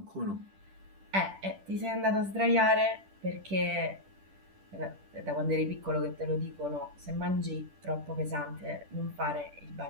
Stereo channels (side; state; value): left; late; 10 ms